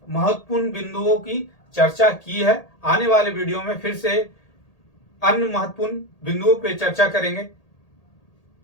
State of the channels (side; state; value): right; late; 1.8 ms